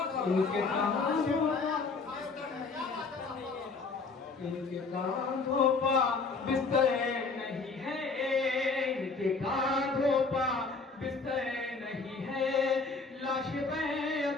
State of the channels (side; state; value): right; quieter; 4.2 dB